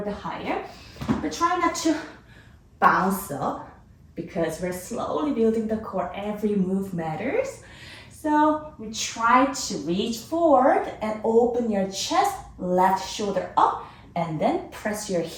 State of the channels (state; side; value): identical; both; correlation 1.00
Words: bit higher. But try not to bounce up because we're slowly building the core. Every move matters. So we try to reach forward and open your chest, left shoulder up, and then press your